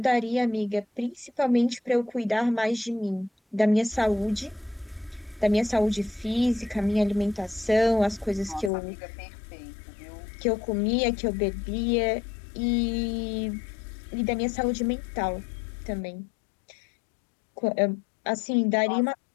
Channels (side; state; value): right; drops out; at 8.7 s